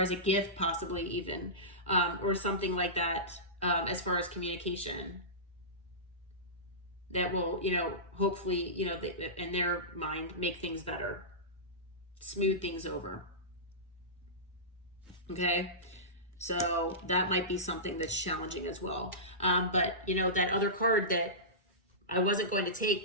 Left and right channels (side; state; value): both; normal; correlation -0.19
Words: as a gift, possibly even, or something like that, as far as communication that will, hopefully, in their mind, make things better, smooth things over. Okay. So that might be something that's challenging as well. But that other card that I wasn't going to take,